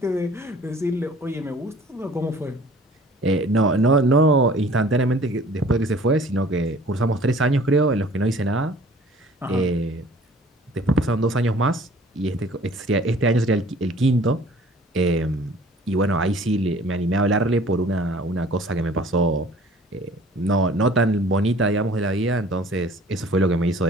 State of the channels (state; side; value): normal; both; correlation 0.50